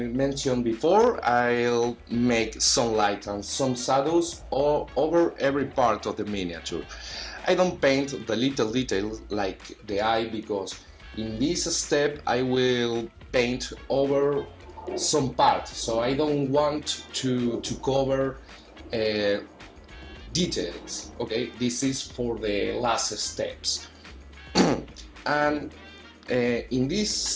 mentioned before, I'll make some light and some shadows over every part of the miniature. I don't paint the little details like the eye, because in this step I will paint over some part, so I don't want to cover details. Okay, this is for the last steps. And in this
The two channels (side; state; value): both; identical; correlation 1.00